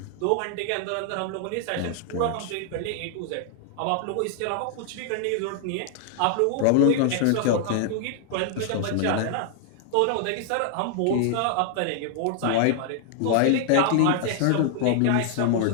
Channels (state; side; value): different; both; correlation 0.00